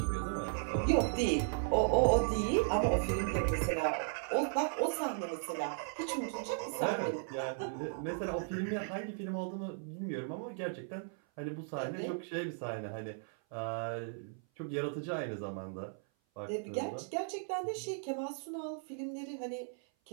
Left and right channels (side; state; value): left; silent; 54 dB below the other